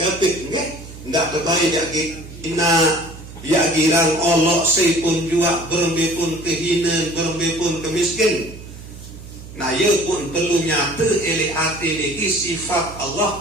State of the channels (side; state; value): right; noise; hum, 15 dB below the sound